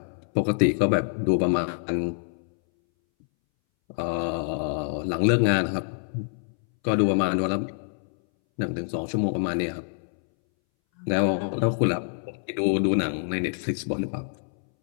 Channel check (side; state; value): right; silent; 61 dB below the other